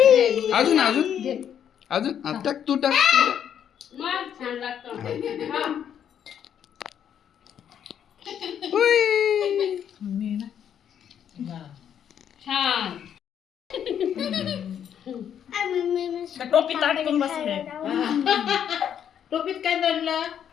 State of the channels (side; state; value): right; quieter; 9.0 dB